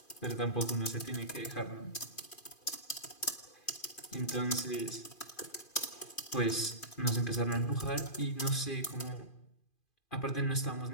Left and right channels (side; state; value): right; late; 2.5 ms